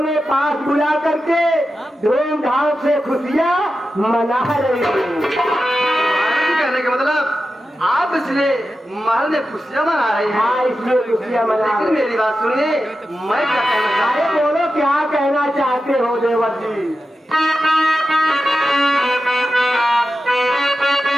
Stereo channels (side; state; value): both; normal; correlation 0.91